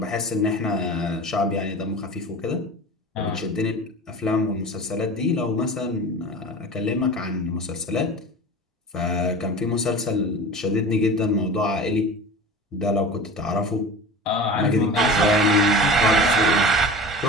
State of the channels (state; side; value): normal; both; correlation 0.35